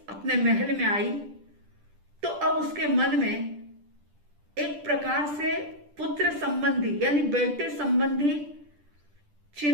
अपने महल में आई तो अब उसके मन में एक प्रकार से पुत्र संबंधी, यानी बेटे संबंधी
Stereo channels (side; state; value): left; late; 10 ms